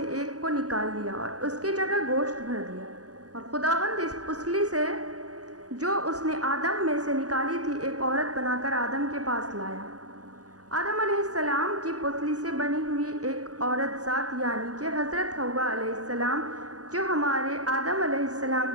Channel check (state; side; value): late; left; 0.67 ms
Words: एक को निकाल लिया और उसकी जगह गोश्त भर दिया। और खुदावंद इस पुसली से जो उसने आदम में से निकाली थी एक औरत बनाकर आदम के पास लाया। आदम अलैहिस्सलाम की पुतली से बनी हुई एक औरत ज़ात यानी कि हज़रत हव्वा अलैहिस्सलाम जो हमारे आदम अलैहिस्सलाम